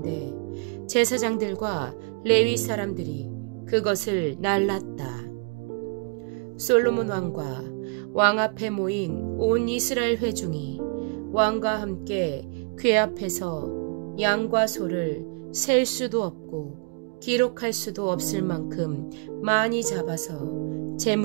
제사장들과 레위 사람들이 그것을 날랐다. 솔로몬 왕과 왕 앞에 모인 온 이스라엘 회중이 왕과 함께 궤 앞에서 양과 소를 셀 수도 없고 기록할 수도 없을 만큼 많이 잡아서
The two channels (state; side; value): quieter; left; 34.2 dB